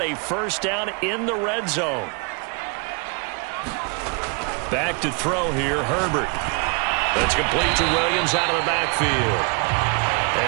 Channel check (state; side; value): quieter; left; 33.8 dB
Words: a first down in the red zone. Back to throw here, Herbert. That's complete to Williams out of the backfield.